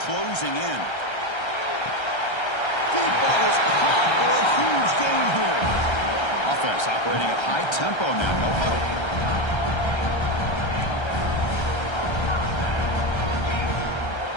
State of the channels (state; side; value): late; right; 1.3 ms